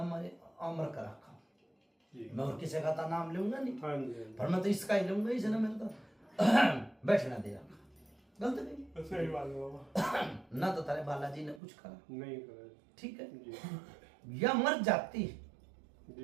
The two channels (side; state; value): left; drops out; at 11.6 s